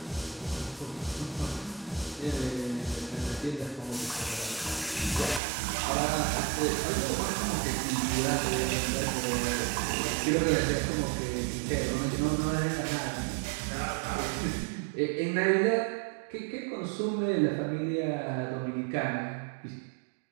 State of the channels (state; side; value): drops out; left; at 5.4 s